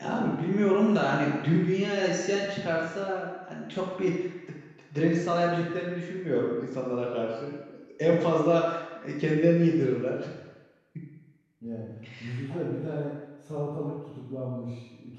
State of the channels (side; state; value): both; identical; correlation 1.00